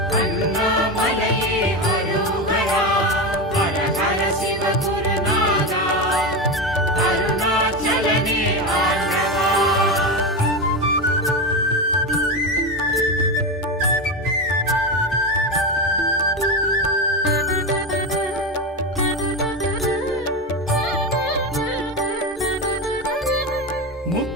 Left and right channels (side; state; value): both; normal; correlation 0.17